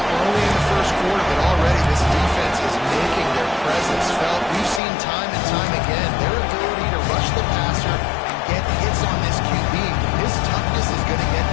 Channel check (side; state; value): right; drops out; at 4.8 s